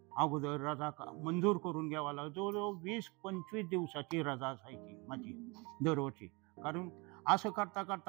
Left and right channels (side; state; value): left; quieter; 28.0 dB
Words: अगोदर रजा मंजूर करून घ्यावा लागला. जवळजवळ 20-25 दिवसाची रजा असायची माझी दरवर्षी. कारण असं करता